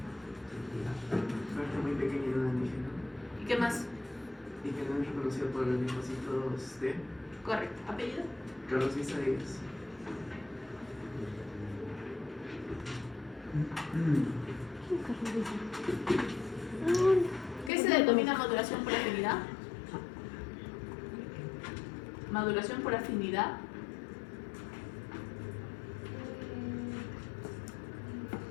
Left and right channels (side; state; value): right; drops out; at 17.7 s